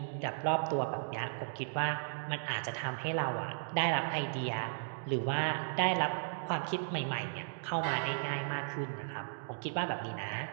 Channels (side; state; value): left; silent; digital silence